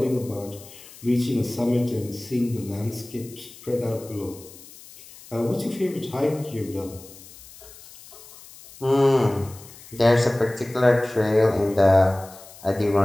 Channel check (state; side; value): noise; left; hiss, 20 dB below the sound